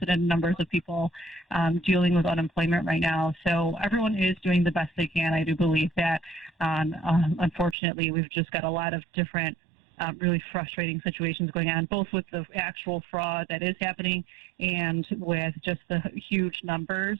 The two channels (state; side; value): drops out; left; at 7.8 s